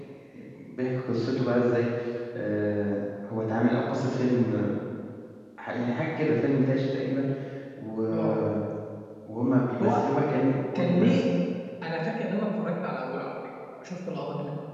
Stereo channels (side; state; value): both; identical; correlation 1.00